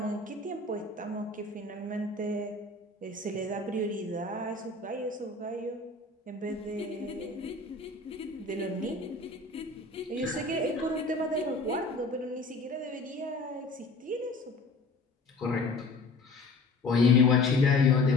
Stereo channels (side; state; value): right; quieter; 3.3 dB